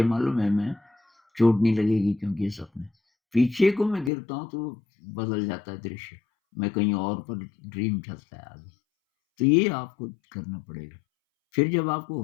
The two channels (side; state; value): right; drops out; at 4.1 s